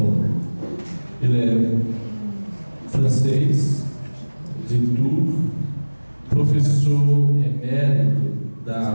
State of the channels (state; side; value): inverted; both; correlation -1.00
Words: Ele é francês, de Tours, professor emérito da